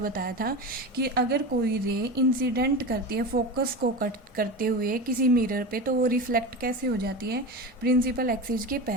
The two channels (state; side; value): normal; both; correlation 0.25